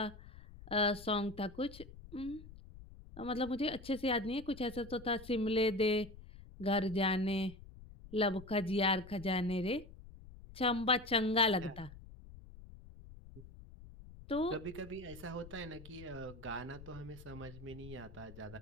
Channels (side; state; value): left; noise; rumble, 17 dB below the sound